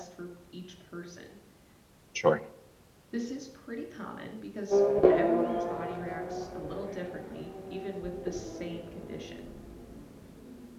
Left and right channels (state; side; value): identical; both; correlation 1.00